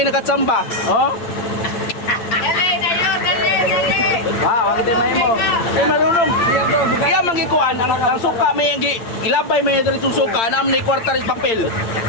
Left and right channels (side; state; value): right; late; 8.8 ms